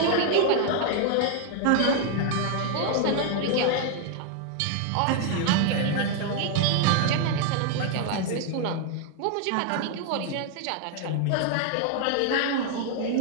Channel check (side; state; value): both; different; correlation 0.00